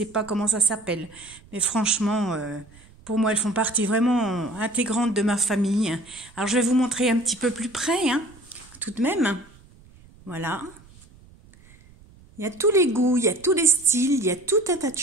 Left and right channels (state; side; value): noise; right; rumble, 25 dB below the sound